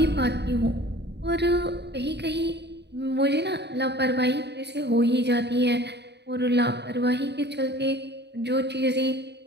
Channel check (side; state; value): left; late; 0.50 ms